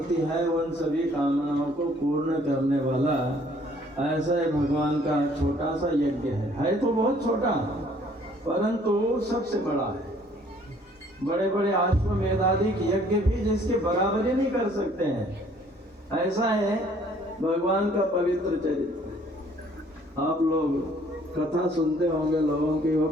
है उन सभी कामनाओं को पूर्ण करने वाला ऐसा भगवान का छोटा सा यज्ञ है तो बहुत छोटा परंतु सबसे बड़ा है। बड़े बड़े अश्वमेधादि यज्ञ भी जिसके बराबरी नहीं कर सकते हैं, ऐसा है भगवान का पवित्र चरित्र। आप लोग कथा सुनते होंगे लोगों की, वो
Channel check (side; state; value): both; normal; correlation 0.59